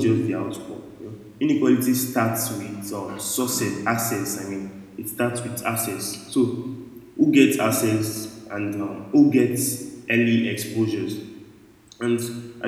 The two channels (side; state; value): both; identical; correlation 1.00